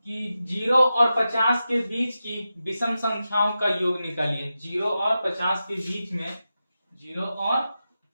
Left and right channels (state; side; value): inverted; both; correlation -0.91